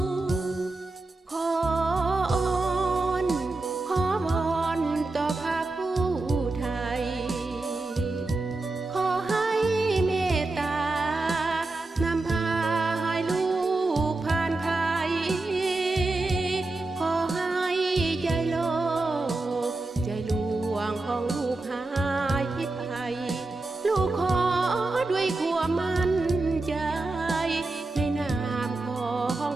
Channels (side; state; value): left; quieter; 3.1 dB